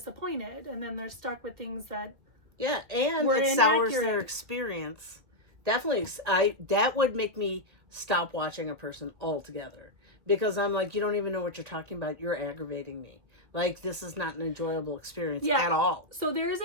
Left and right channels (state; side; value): late; left; 1.8 ms